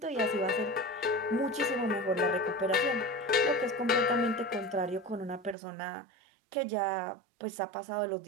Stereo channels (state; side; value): drops out; left; at 5.6 s